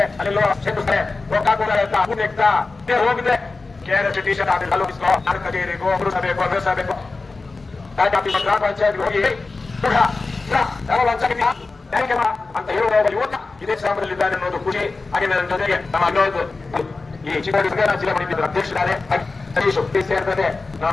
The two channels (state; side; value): quieter; right; 3.7 dB